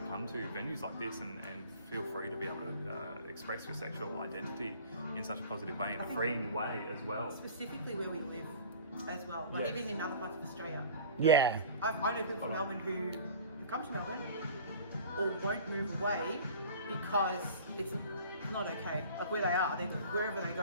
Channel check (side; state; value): both; inverted; correlation -0.43